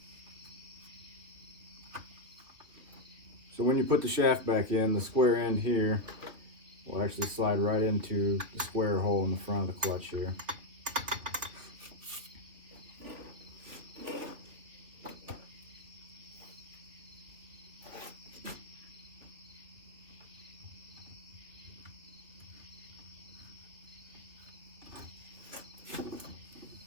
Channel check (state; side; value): late; left; 3.5 ms